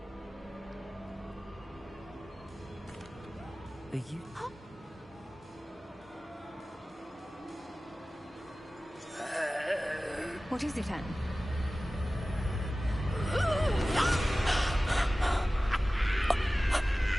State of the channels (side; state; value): both; normal; correlation 0.97